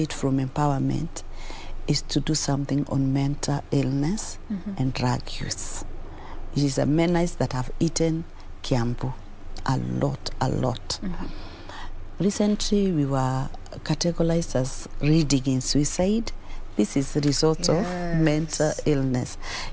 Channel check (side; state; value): both; identical; correlation 1.00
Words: from empowerment is to do something on mental illness and drug use. It is a menace that have eaten Kiambu a lot. Recently, we were categorized as reading in suicide. This is the result of mental illness.